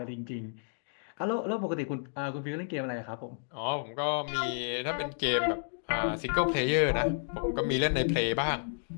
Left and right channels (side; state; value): right; silent; digital silence